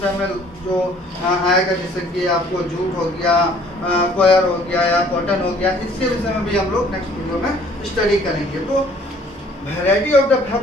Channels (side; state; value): both; normal; correlation 0.57